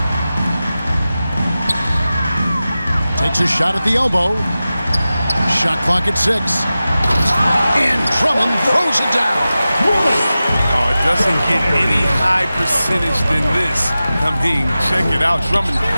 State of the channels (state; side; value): inverted; both; correlation -0.95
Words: Takes a shot at the elbow. Shot clock at 6. And Drummond throws it down. Oh, it doesn't get any high percentage than this. I mean, check it out. Drummond